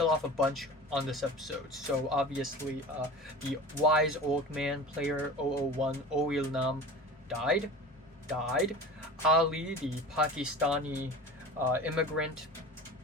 off a bunch on this episode. So obviously, the wise old man player 001, Ho-yeon, died. Ali, the Pakistani immigrant,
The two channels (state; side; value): normal; both; correlation 0.35